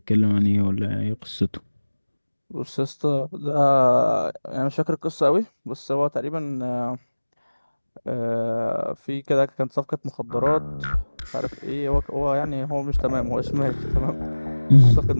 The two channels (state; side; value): inverted; both; correlation -1.00